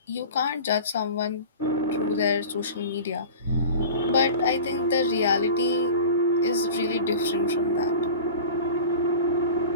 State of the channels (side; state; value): both; inverted; correlation -0.37